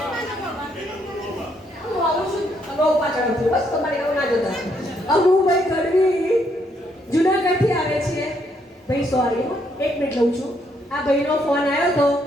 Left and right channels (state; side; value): normal; both; correlation 0.73